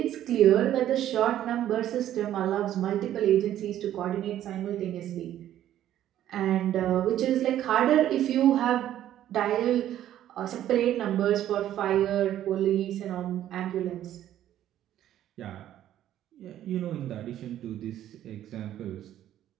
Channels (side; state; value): left; quieter; 12.0 dB